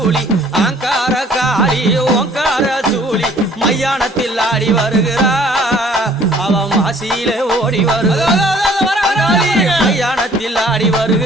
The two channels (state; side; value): normal; both; correlation 0.56